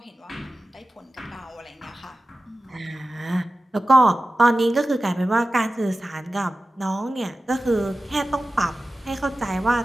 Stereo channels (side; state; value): both; normal; correlation 0.95